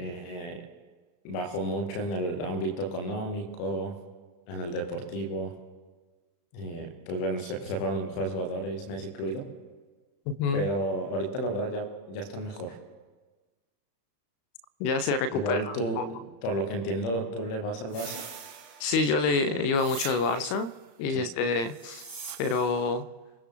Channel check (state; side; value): late; right; 35 ms